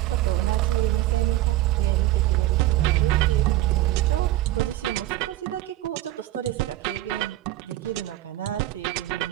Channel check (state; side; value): quieter; left; 15.2 dB